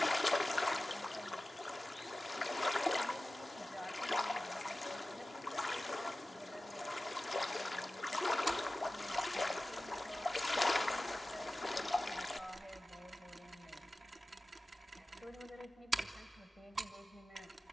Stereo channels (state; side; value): normal; both; correlation 0.96